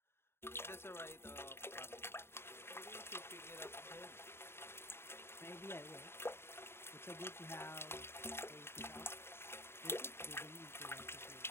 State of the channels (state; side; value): late; right; 0.12 ms